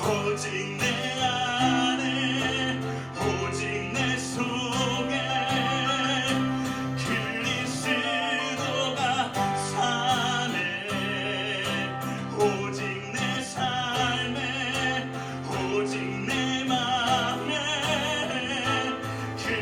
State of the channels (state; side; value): identical; both; correlation 1.00